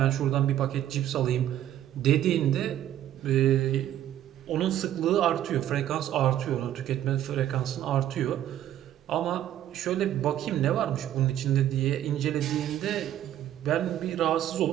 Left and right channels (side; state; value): left; quieter; 11.8 dB